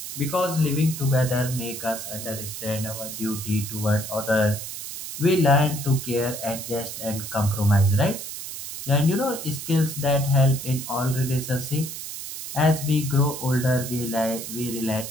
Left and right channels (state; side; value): noise; right; hiss, 8 dB below the sound